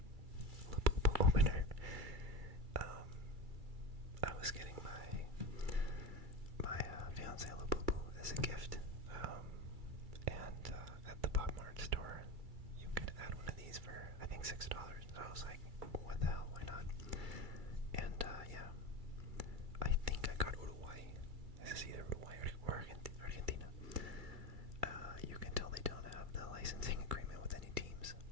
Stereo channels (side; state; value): left; late; 2.3 ms